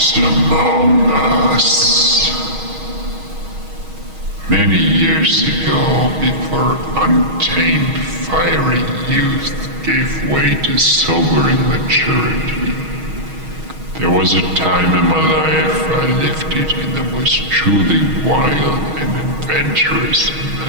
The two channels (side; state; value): left; late; 6.3 ms